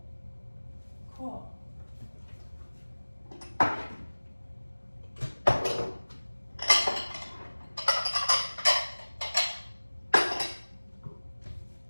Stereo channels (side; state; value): both; inverted; correlation -1.00